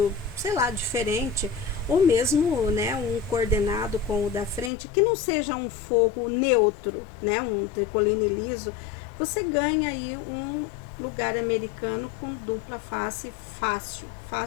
sei lá, diferente, ou mesmo, né, um coordenado com o da frente, que não seja um forro neutro, né, um tricoline liso, você ganha aí um lugar americano com dupla face fácil,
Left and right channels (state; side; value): drops out; right; at 4.7 s